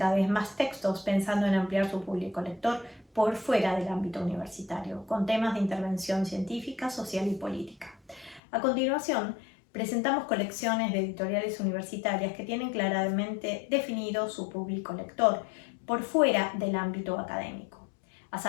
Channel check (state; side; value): drops out; right; at 8.4 s